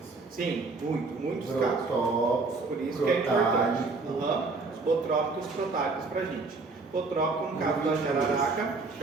Sim, muitos casos. Protópicos, Por isso que é importante. Os botrópicos e protálicos para a gente. Botrópico no caso da jararaca,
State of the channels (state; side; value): quieter; left; 3.9 dB